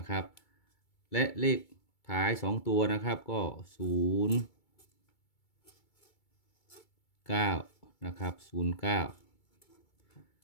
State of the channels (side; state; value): right; late; 2.3 ms